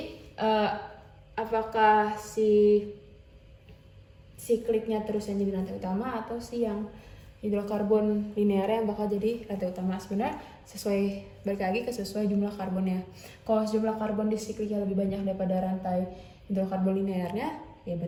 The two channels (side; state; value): both; identical; correlation 1.00